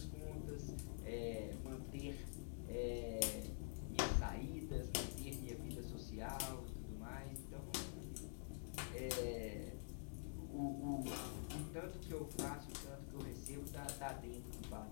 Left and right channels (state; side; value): silent; right; digital silence